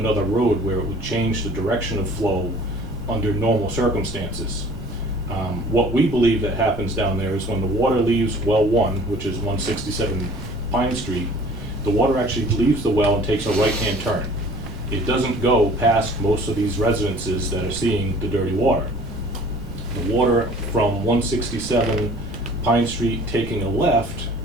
road where it would change the direction of flow under normal circumstances. What we believe that happens down there is when the water leaves well 1, which is 167 Pine Street, the water actually leaves the well and takes a right-hand turn. It doesn't go past most of these residences that are seeing the dirty water. The water from 167 Pine Street taking a left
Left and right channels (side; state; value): left; noise; rumble, 11 dB below the sound